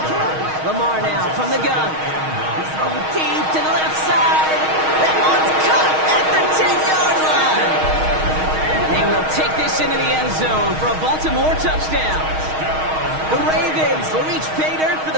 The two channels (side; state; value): left; late; 6.4 ms